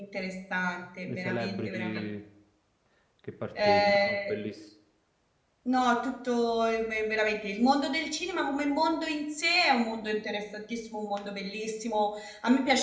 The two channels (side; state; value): both; identical; correlation 1.00